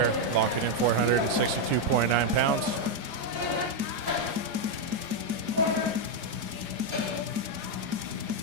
Locking in 462.9 pounds.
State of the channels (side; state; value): left; late; 4.9 ms